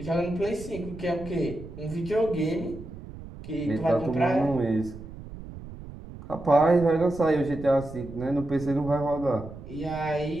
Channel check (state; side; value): noise; right; rumble, 14 dB below the sound